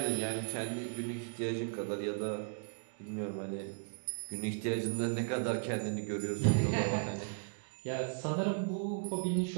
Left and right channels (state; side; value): silent; left; digital silence